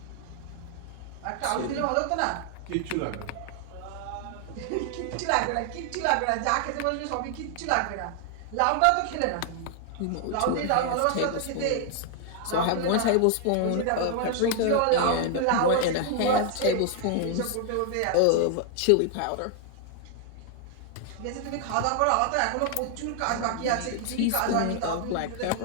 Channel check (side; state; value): both; different; correlation 0.00